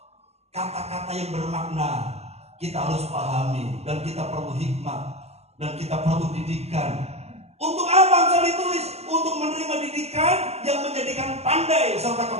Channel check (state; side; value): late; left; 0.30 ms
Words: Kata-kata yang bermakna kita harus pahami, dan kita perlu hikmat, dan kita perlu didikan. Untuk apa Amsal ditulis? Untuk menerima didikan yang menjadikan pandai serta